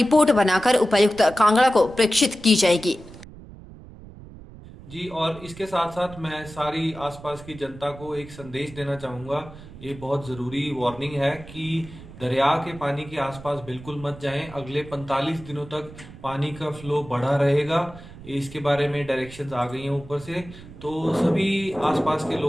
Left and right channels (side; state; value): right; noise; rumble, 17 dB below the sound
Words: बनाकर उपायुक्त कांगड़ा को प्रेषित की जाएगी। जी, और इसके साथ साथ मैं सारी आसपास की जनता को एक संदेश देना चाहूँगा। ये बहुत ज़रूरी वार्निंग है कि दरिया के पानी के आसपास बिल्कुल मत जाएं। अगले 45 दिनों तक पानी का फ्लो बढ़ा रहेगा। इसके बारे में डायरेक्शंस आ गई हैं ऊपर से, तो सभी आसपास के